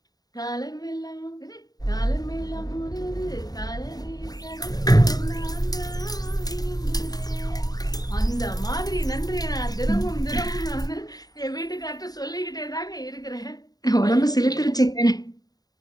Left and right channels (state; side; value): late; right; 0.18 ms